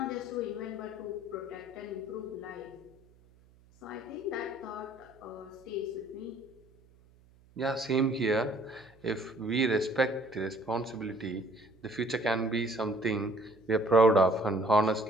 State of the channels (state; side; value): noise; right; hum, 28 dB below the sound